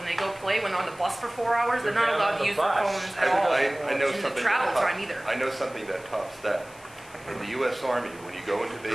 they go play. When they're on the bus for 4 hours, they're not They're allowed on to the use their bus. phones at all. I know in the something travel that time either. I know something that tops that. In the U.S. Army, when you go into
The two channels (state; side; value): noise; left; hiss, 23 dB below the sound